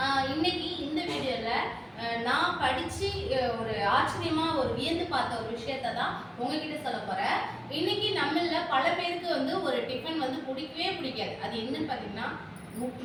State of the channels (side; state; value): both; identical; correlation 1.00